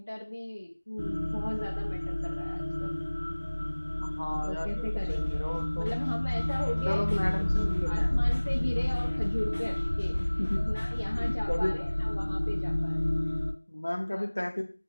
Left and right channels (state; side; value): inverted; both; correlation -1.00